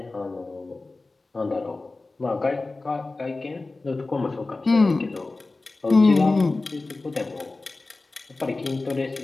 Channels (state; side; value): quieter; right; 3.4 dB